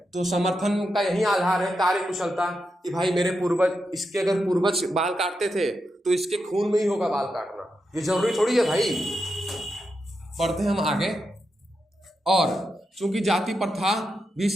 तो समर्थन का यही आधार है कार्य कुशलता कि भाई मेरे पूर्वज, इसके अगर पूर्वज बाल काटते थे तो इसके खून में ही होगा बाल काटना, ये जरूरी थोड़ी है भाई। पढ़ते हैं हम आगे। और चूंकि जाति प्रथा भी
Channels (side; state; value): both; normal; correlation 0.86